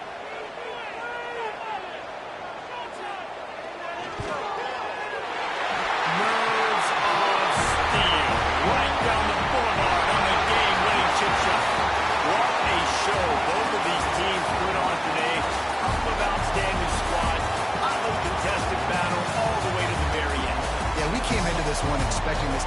One expecting this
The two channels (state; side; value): identical; both; correlation 1.00